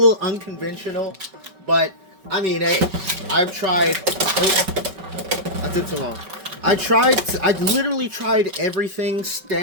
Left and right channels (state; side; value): late; left; 5.3 ms